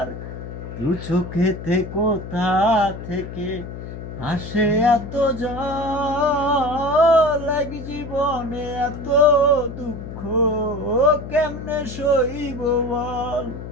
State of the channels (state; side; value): noise; left; hum, 10 dB below the sound